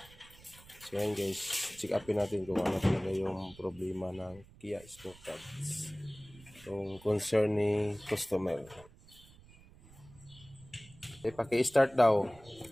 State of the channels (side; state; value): right; noise; rumble, 23 dB below the sound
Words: So yan guys, check upin natin kung ano talaga yung problema ng Kia Sportage. Yung concern ni customer. Paki-start daw